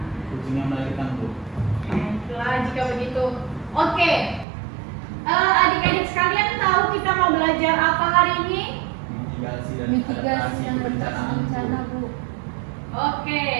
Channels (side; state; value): left; drops out; at 4.5 s